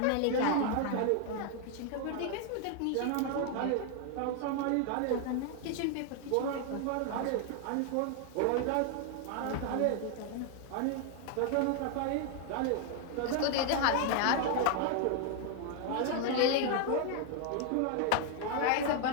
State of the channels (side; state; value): both; different; correlation 0.00